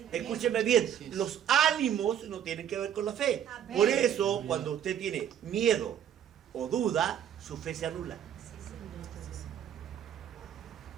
Escúcheme bien, los ánimos no tienen que ver con la fe. Amén. Por eso, cuando usted tiene miedo o duda, su fe se anula.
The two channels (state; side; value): quieter; left; 9.7 dB